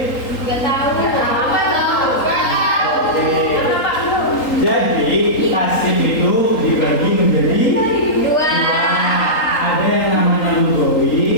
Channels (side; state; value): right; late; 3.8 ms